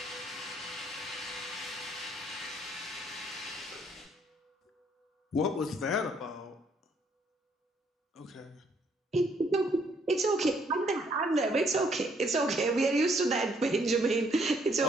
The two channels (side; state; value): both; normal; correlation 0.67